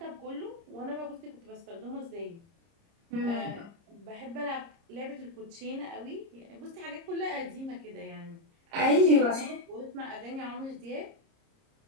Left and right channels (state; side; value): late; left; 30 ms